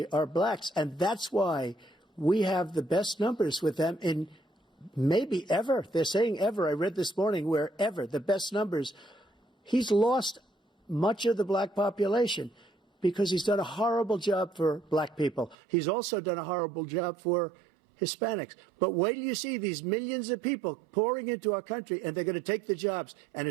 are blacks. And that's why we have the best numbers with them in maybe ever. They're saying ever. I read this morning where ever, the best numbers. He's lost much of the black population because he's done a horrible job for black people. He's also done a horrible job for Hispanics. But wait till you see these millions of people pouring into our country, and they're going to take the jobs, and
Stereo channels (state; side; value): drops out; left; at 15.6 s